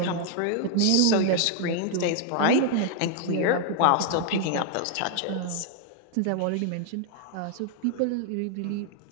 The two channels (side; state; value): both; different; correlation 0.00